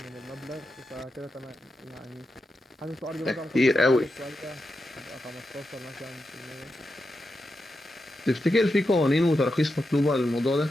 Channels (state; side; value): normal; both; correlation 0.88